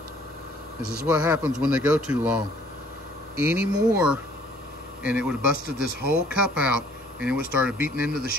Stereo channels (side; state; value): both; normal; correlation 0.58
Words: This is what happens when they go too long. Any more and it would have busted this whole cup out and it would have started beating into the